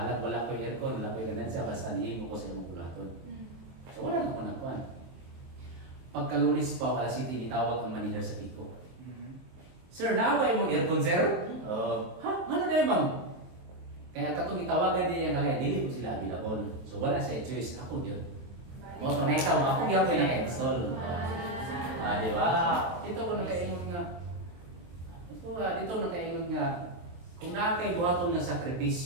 wala ko aircon, wala ko ganan siya, basta nihimo ko sa imong bulaton. So wala na ko nakuan. Pagkalunis pa, alas 7, itawag ang manager sa Pico. Sir, naway mong aircon, sir? Ha? Ano na ma'am? Kaya katong itawagan niya kaya dili ko sila available. So wala sa choice, ako yun. Mo to next time, ako gyapon naka-install. Di ba? Dito ko nakaingon nga. Dito nakaingon nga kung nakay buhaton nga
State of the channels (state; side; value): late; left; 23 ms